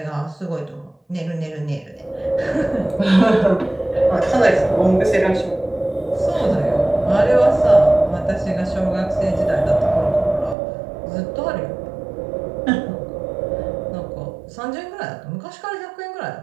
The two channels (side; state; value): left; drops out; at 10.6 s